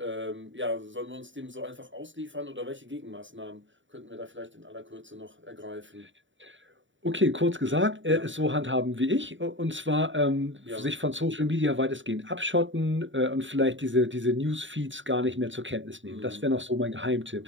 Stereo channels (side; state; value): left; late; 0.55 ms